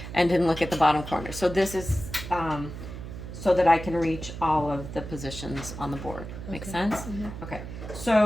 and didn't look at the bottom corner. So this is so that I can reach all of the positions on the board. Make sense? Mm-hmm. Okay,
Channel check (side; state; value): right; noise; hum, 10 dB below the sound